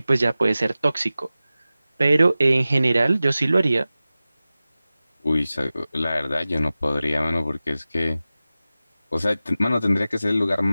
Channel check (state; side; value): inverted; both; correlation -0.95